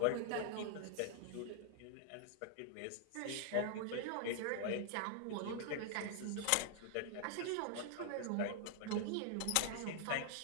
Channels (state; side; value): different; both; correlation -0.01